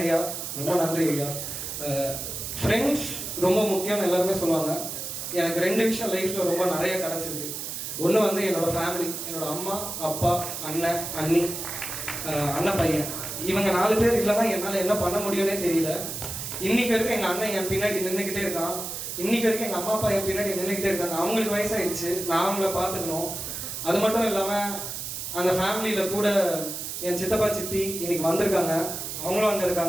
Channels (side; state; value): right; noise; hiss, 6 dB below the sound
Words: ஐயா, ரொம்ப நன்றி ஐயா. ஃப்ரெண்ட்ஸ் ரொம்ப முக்கியம்னு எல்லாருமே சொல்லுவாங்க. எனக்கு 2 விஷயம் லைஃப்பில் ரொம்ப நிறைய கிடச்சிருக்கு. ஒன்று வந்து என்னோட ஃபேமிலி, என்னோட அம்மா அப்பா அண்ணன் அண்ணி அண்ணன் பையன், இவங்க 4 பேர் இல்லைன்னா என்னால் என்ன பண்ண முடியும்னே தெரியல. இன்னைக்கு வரைக்கும் எங்கள் அண்ணன் என் பின்னாடி நின்றுக்கிட்டே இருக்கான். இன்னைக்கு வரைக்கும் எங்கள் அம்மா அப்பா என் பின்னாடி நின்றுக்கிட்டே இருக்காங்க. அவங்களுக்கு வயசாகிடுச்சு, நான் அவங்கள பார்த்துக்கணும். அது மட்டும் இல்லாமல் அந்த ஃபேமிலியில் கூட என் சித்தப்பா சித்தி இன்னைக்கு வந்திருக்காங்க, அவங்களும் அங்கே